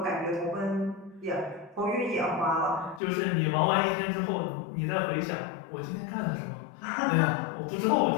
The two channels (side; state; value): right; drops out; at 3.0 s